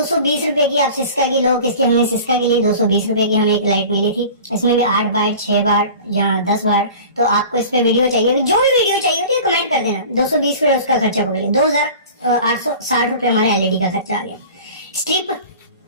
रुपए की। आप सिस्का की लो, किसकी हमने सिस्का के लिए 220 रुपए की हमें एक लाइट मिली थी। इसमें भी 8 वाट 6 वाट या 10 वाट। तो आपको इस पे वीडियो चाहिए, जो भी वीडियो चाहिए होती है कमेंट कर देना। 220 रुपए उसका खर्चा पकड़िए। 2860 रुपए हमारे एलईडी का खर्चा आ गया। स्ट्रिप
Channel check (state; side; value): inverted; both; correlation -0.40